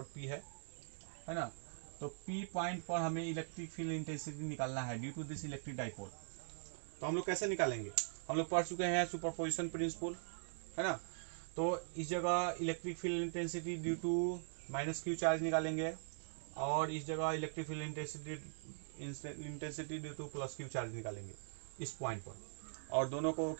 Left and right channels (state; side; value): silent; left; digital silence